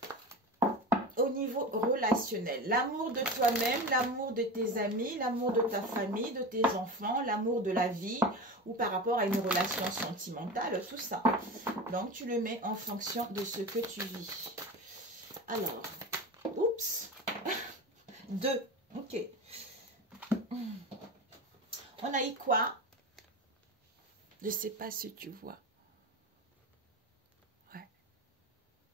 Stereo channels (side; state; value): both; normal; correlation 0.27